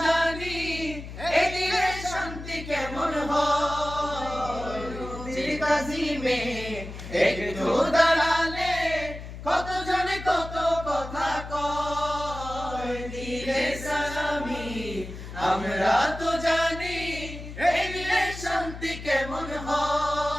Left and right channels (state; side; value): noise; left; hum, 11 dB below the sound